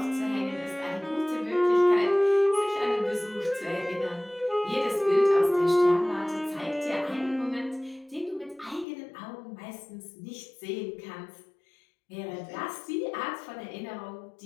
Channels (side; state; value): right; drops out; at 8.8 s